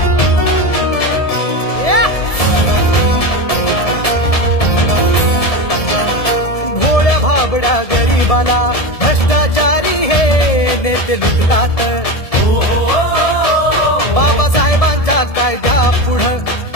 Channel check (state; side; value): late; right; 1.7 ms